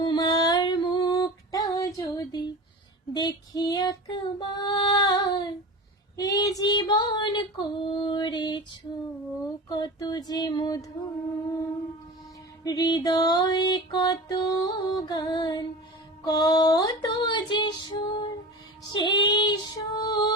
মুখটা যদি দেখি একবার, এ জীবন করেছো কত যে মধুর, হৃদয়ে কত গান কত যে সুর, সেই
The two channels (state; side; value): normal; both; correlation 0.32